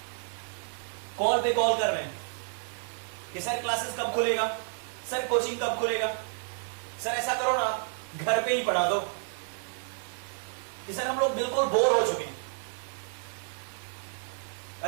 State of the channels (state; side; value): silent; left; 57 dB below the other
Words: कॉल पे कॉल कर रहे हैं कि सर क्लासेस कब खुलेगा, सर कोचिंग कब खुलेगा, सर ऐसा करो ना घर पे ही पढ़ा दो। कि सर हम लोग बिल्कुल बोर हो चुके हैं।